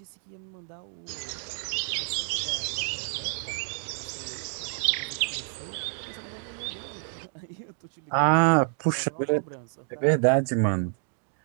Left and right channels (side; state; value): left; silent; 59 dB below the other